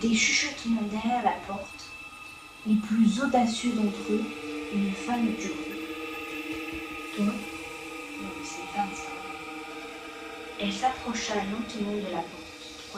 des chuchotements derrière la porte. Les plus audacieux d'entre eux, une femme du rue. Toi? Non, c'est 25. Elle s'approcha lentement de la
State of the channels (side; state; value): both; identical; correlation 1.00